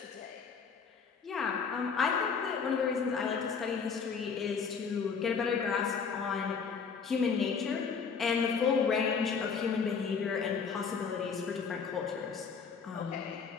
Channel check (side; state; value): right; quieter; 5.8 dB